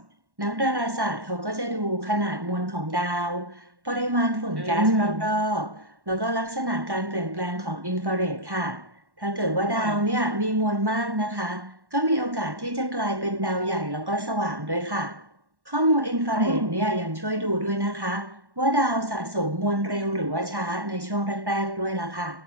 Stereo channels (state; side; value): late; left; 1.1 ms